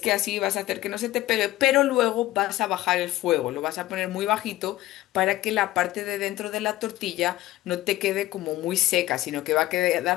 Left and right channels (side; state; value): right; quieter; 16.0 dB